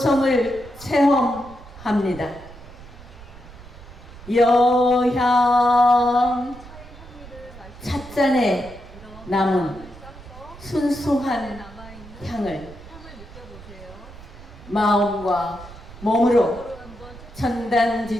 체험합니다. 여향 찻잔에 남은 순수한 향을 마음과 몸으로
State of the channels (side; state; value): right; noise; rumble, 18 dB below the sound